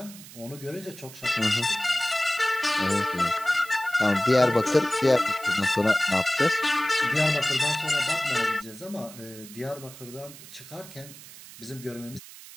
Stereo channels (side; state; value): right; noise; hiss, 17 dB below the sound